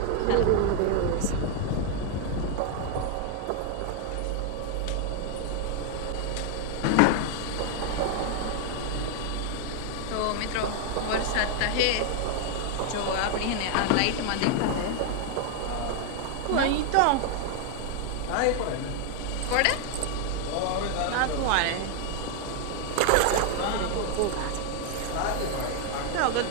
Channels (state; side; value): different; both; correlation 0.00